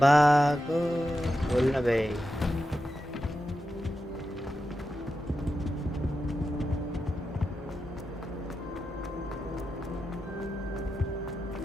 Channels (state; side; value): normal; both; correlation 0.89